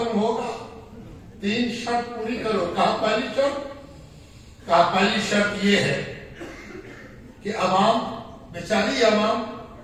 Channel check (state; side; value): identical; both; correlation 1.00